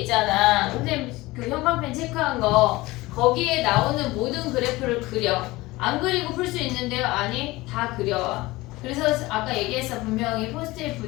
선생님 그 형광펜 체크한 거 거기에 나오는 모든 그래프를 그려. 안 그리고 풀 수 있는데요? 아니 다 그려. 그래서 아까 얘기했어. 분명히 포스트잇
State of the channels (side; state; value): right; quieter; 20.1 dB